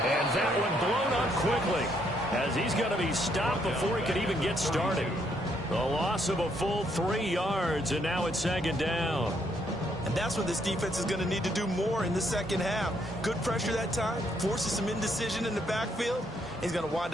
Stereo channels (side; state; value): both; normal; correlation 0.72